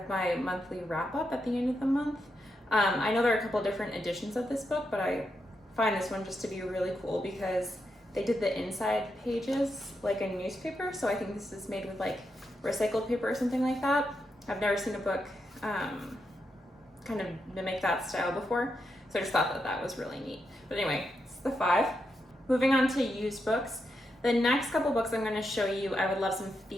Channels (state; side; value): normal; both; correlation 0.84